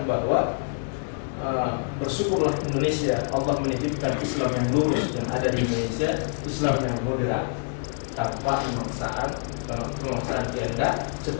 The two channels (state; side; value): silent; right; 61 dB below the other